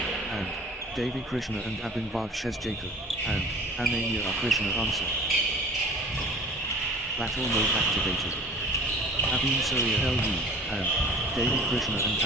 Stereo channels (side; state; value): both; normal; correlation 0.44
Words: and Devi Krishna and Abhinbag Jacob and Ananya Krishna. Answer. Battle mode activated. Avin Surya LU and Devi Krishna and